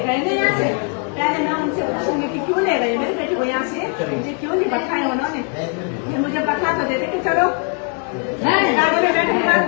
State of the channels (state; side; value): quieter; right; 37.8 dB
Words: गए ना यहाँ से, पहले मैं उनसे पूछूंगी कि क्यों ले गए मेरे बेटे को यहाँ से, मुझे क्यों नहीं बैठाए उन्होंने। फिर मुझे बैठा तो देते कि चलो गाड़ी में बैठे,